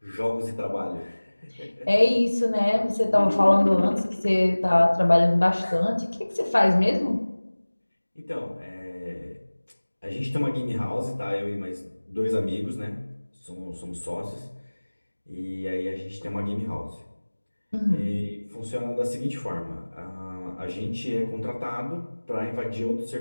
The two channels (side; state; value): both; inverted; correlation -1.00